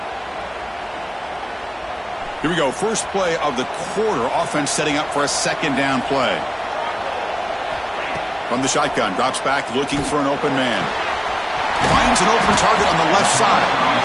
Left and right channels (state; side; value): identical; both; correlation 1.00